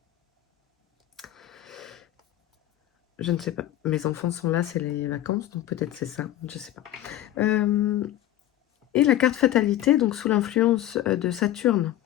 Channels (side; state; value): right; quieter; 13.2 dB